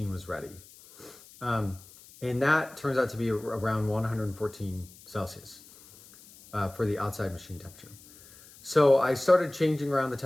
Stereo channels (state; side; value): noise; left; hiss, 22 dB below the sound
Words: was ready. And that turns out to be around 114 Celsius for the outside machine temperature. So I started changing around the